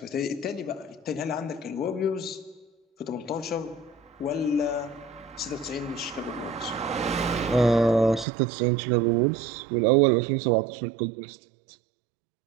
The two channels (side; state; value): left; drops out; at 8.2 s